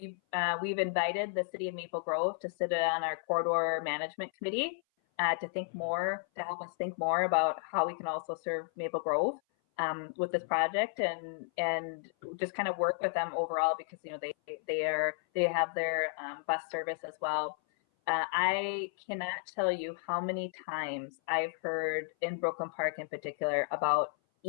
invited the city of Maple Grove to sit on our corridor management committee to help us think more about how we can also serve Maple Grove with this project and just kind of work with them overall because they have their bus service as well. I cannot tell you how many times I've heard in Brooklyn Park in particular about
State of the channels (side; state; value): right; silent; 56 dB below the other